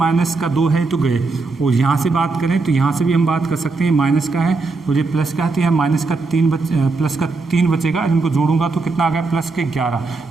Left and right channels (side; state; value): left; quieter; 3.9 dB